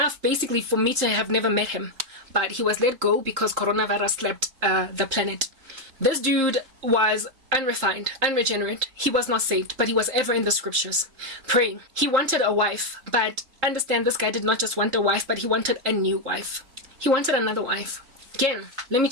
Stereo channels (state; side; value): late; left; 3.7 ms